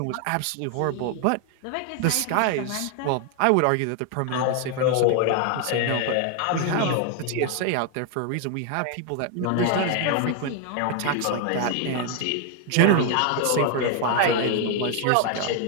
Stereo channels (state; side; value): different; both; correlation 0.00